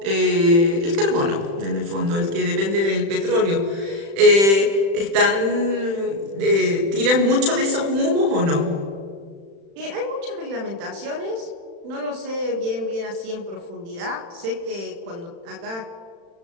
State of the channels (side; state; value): left; late; 36 ms